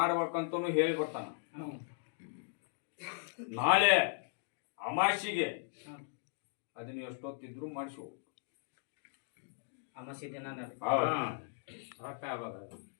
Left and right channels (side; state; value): right; silent; digital silence